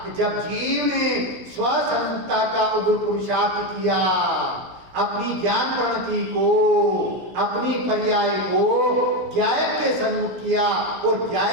कि जब जीव ने स्वसंता का उग्र पुरुषार्थ किया, अपनी ज्ञान प्रणति को, अपनी पर्याय को ज्ञायक के सन्मुख किया और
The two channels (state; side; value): late; left; 16 ms